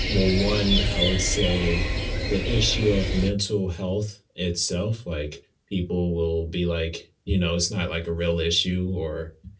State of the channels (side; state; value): both; identical; correlation 1.00